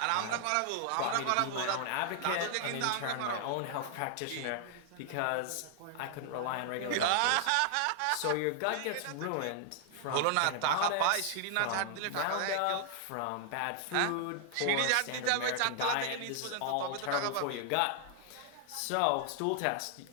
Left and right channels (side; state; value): both; different; correlation 0.00